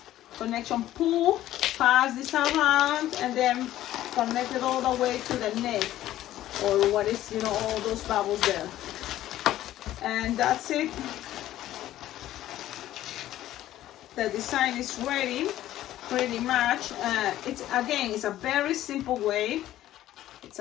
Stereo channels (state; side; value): quieter; right; 13.7 dB